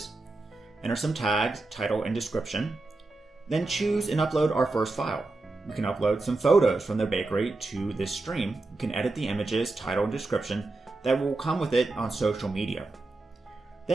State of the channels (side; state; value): left; quieter; 3.2 dB